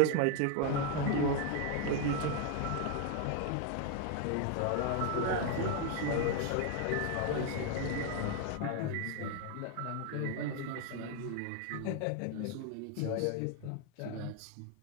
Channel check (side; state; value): both; different; correlation 0.01